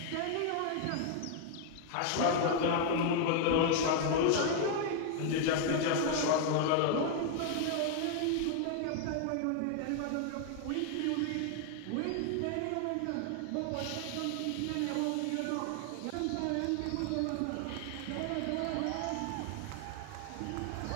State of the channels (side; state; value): both; different; correlation 0.00